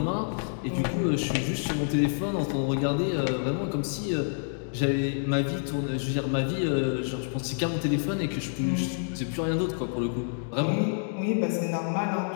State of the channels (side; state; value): right; silent; digital silence